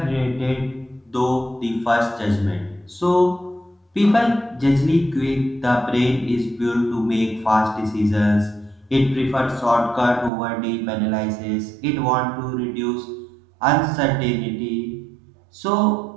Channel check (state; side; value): drops out; left; at 10.3 s